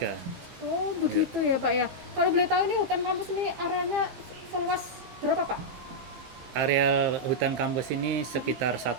Oh begitu ya Pak ya. Kalau boleh tahu ini hutan kampus ini areanya seluas berapa Pak? Areal hutan kampus ini sekitar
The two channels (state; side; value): late; left; 15 ms